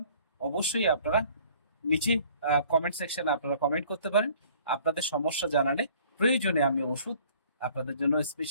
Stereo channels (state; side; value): inverted; both; correlation -0.55